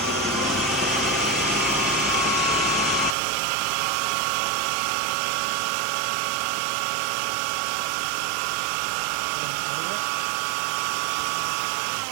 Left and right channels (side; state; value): left; drops out; at 3.2 s